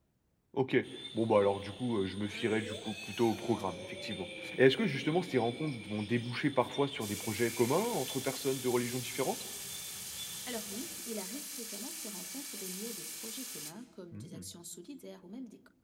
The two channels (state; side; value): identical; both; correlation 1.00